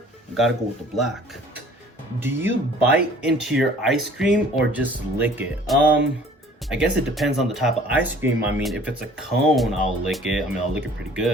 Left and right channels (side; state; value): both; normal; correlation 0.52